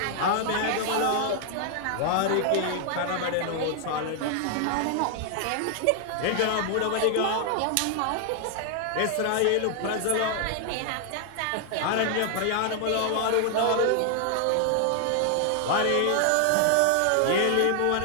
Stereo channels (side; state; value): both; different; correlation 0.00